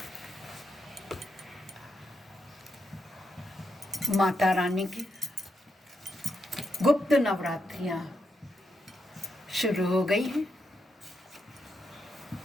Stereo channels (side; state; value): both; normal; correlation 0.82